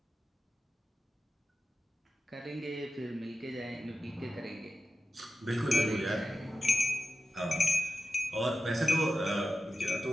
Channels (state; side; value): normal; both; correlation 0.91